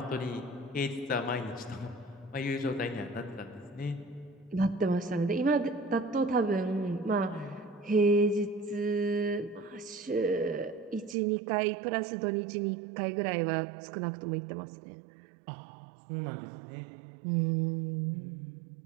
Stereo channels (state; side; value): drops out; left; at 11.2 s